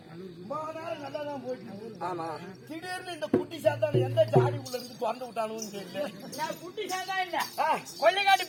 நல்லாதான் போயிட்டு. ஆமா திடீர்னு இந்த குட்டி சாத்தான் எந்த ஜாடி உள்ள இருந்து திறந்து விட்டானு தெரியல. நான் குட்டி சாத்தா இல்ல கொள்ளைக்காட்டு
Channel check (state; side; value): identical; both; correlation 1.00